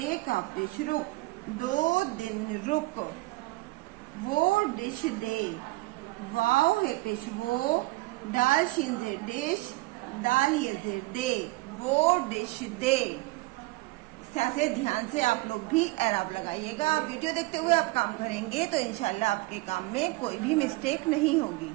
का पेश रुक, 2 दिन रुक। वो डिश दे, वाव है पेश वो, दाल शीन जेर डिश, दाल ये जेर दे, वो डिश दे। इस तरह से ध्यान से आप लोग भी एराब लगाइएगा। आप वीडियो देखते हुए आप काम करेंगे तो इंशाल्लाह आपके काम में कोई भी मिस्टेक नहीं होगी।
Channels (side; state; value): left; quieter; 21.7 dB